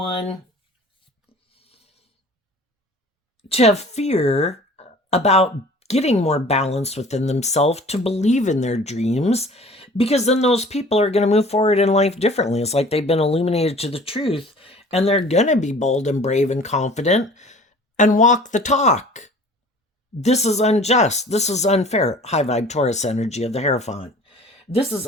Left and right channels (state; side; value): normal; both; correlation 0.46